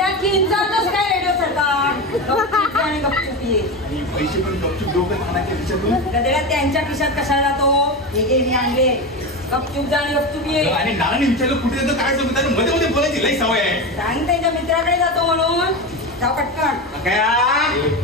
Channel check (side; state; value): both; normal; correlation 0.20